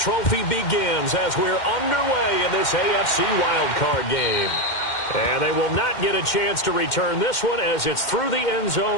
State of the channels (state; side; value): late; right; 2.1 ms